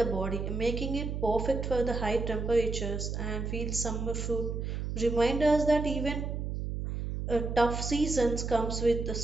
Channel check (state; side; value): noise; right; hum, 3 dB below the sound